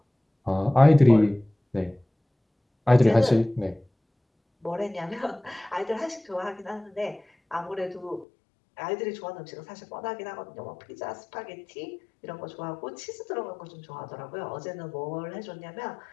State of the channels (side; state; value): right; drops out; at 8.2 s